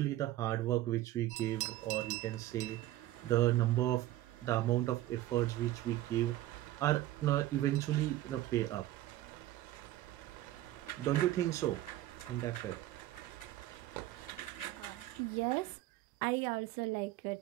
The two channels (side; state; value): left; quieter; 15.1 dB